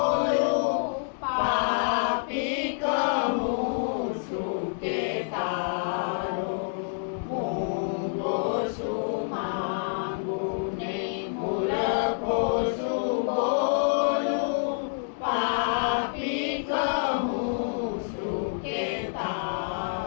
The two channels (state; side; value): silent; right; digital silence